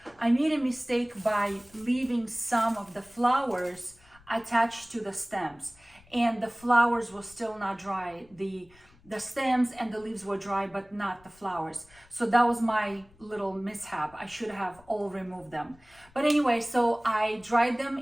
I made a mistake by leaving some of the flowers attached to the stems, and the flowers were still not dry. The stems and the leaves were dry, but not the flowers. So that was my little mishap. I should have all removed them. But anyway, so I dried them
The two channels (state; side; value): noise; left; rumble, 27 dB below the sound